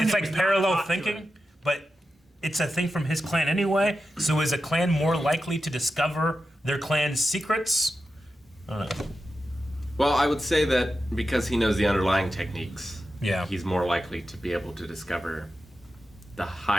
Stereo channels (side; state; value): both; normal; correlation 0.91